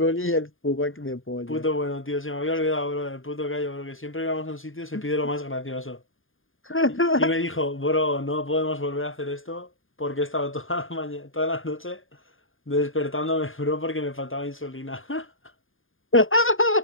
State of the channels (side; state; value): right; late; 0.59 ms